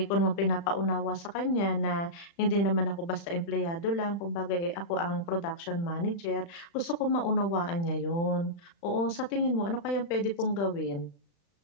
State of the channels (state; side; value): late; right; 35 ms